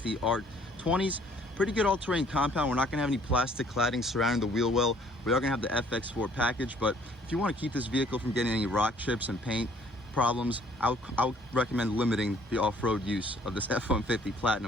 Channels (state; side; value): normal; both; correlation 0.59